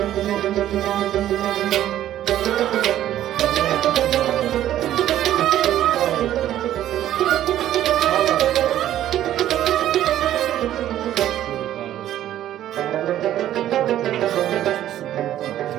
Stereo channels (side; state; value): left; quieter; 12.3 dB